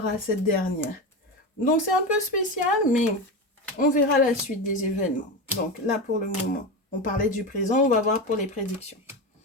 à cette dernière. Donc, c'est un peu spécial, mais on verra la suite des événements. Donc, là, pour le moment, on parlait du présent, on va voir pour les prédictions.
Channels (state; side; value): normal; both; correlation 0.20